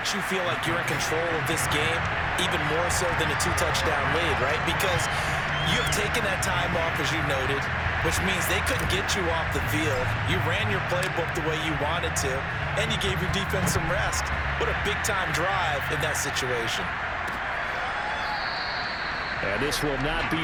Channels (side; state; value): both; identical; correlation 1.00